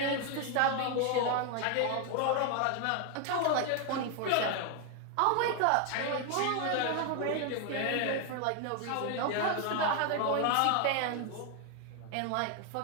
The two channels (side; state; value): both; different; correlation 0.01